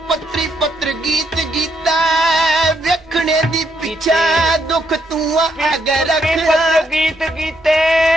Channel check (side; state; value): both; normal; correlation 0.75